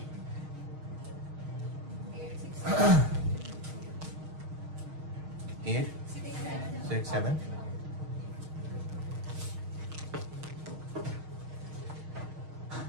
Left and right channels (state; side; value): late; left; 6.4 ms